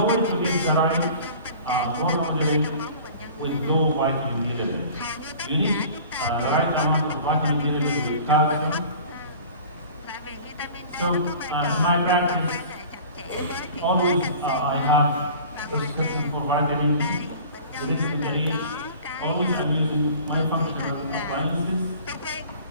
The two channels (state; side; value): inverted; both; correlation -0.43